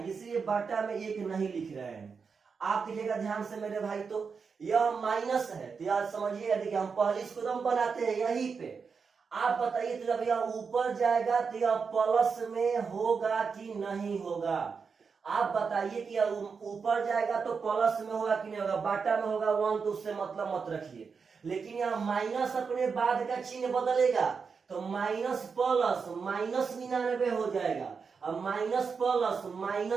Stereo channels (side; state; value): left; quieter; 5.5 dB